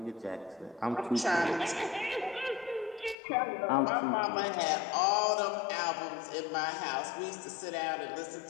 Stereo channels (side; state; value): right; drops out; at 3.2 s